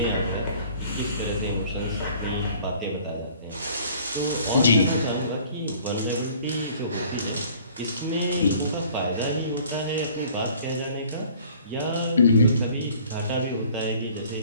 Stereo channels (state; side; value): inverted; both; correlation -0.53